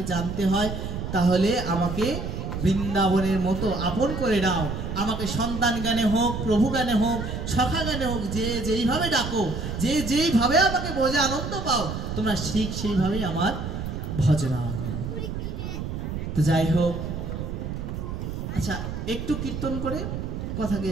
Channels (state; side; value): noise; right; rumble, 5 dB below the sound